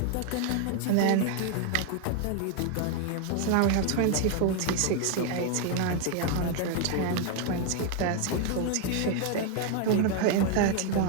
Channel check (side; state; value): both; different; correlation 0.01